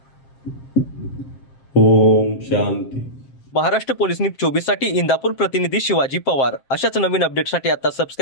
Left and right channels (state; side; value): late; right; 7.6 ms